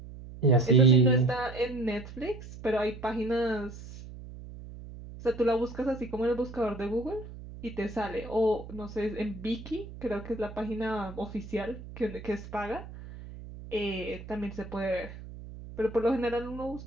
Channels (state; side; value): noise; right; hum, 13 dB below the sound